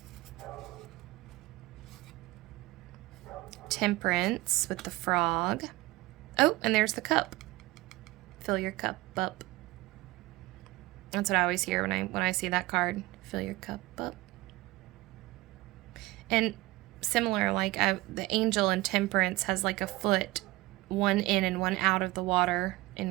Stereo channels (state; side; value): quieter; left; 19.9 dB